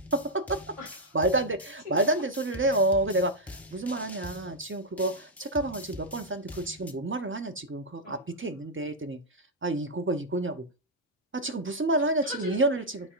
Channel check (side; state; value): both; normal; correlation -0.02